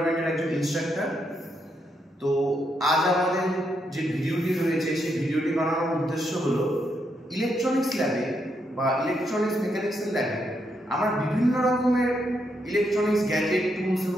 একজন ইনস্ট্রাক্টর। তো আজ আমাদের যে ভিডিওটি রয়েছে সেই ভিডিওটি বানানোর উদ্দেশ্য হলো ইলেকট্রনিক্স ল্যাবে বা ইলেকট্রনিক্স মেকানিক্সের ল্যাবে আমরা বিভিন্ন রকমের ইলেকট্রনিক্স গ্যাজেট, টুলস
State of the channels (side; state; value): both; normal; correlation 0.79